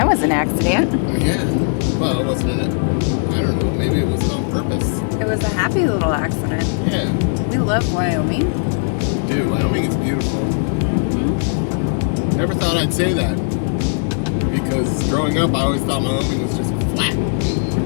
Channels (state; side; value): silent; right; digital silence